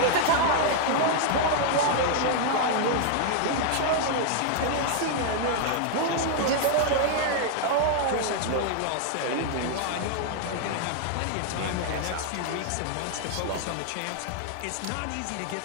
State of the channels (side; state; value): both; different; correlation 0.00